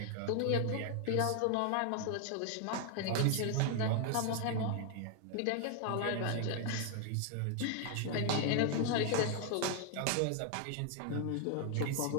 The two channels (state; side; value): different; both; correlation 0.00